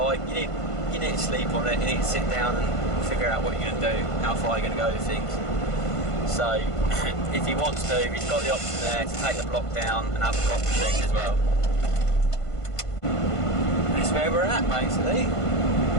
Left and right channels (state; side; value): late; right; 1.5 ms